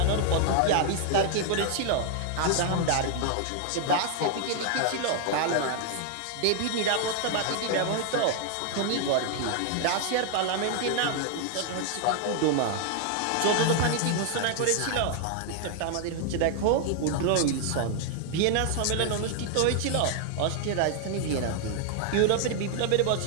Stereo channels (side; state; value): both; different; correlation 0.00